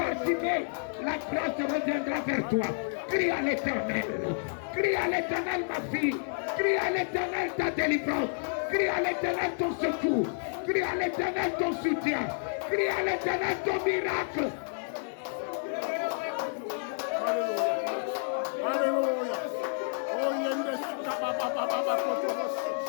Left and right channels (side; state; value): right; silent; 58 dB below the other